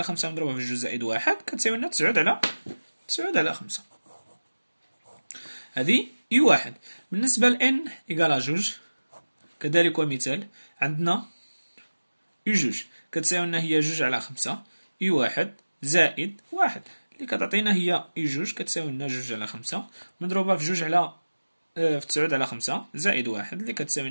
خمسة مضروبة في جوج زائد واحد كتساوي لنا تسعود على خمسة. هذه اي واحد. بالنسبة ل n إيكالا جوج كذلك ومثال، عندنا اي جوج كتساوي لنا هي جوج على خمسة اي واحد زائد واحد اللي كتعطينا هي اي جوج كتساوي لنا جوج على خمسة مضروبة في جوج على في تسعود على خمسة زائد واحد اللي كتساوي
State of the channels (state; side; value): inverted; both; correlation -1.00